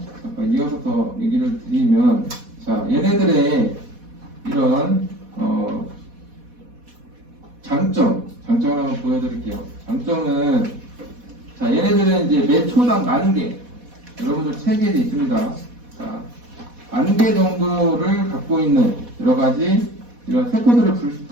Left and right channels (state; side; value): late; left; 4.1 ms